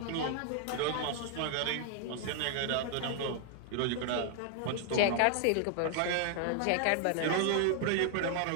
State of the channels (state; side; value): different; both; correlation 0.00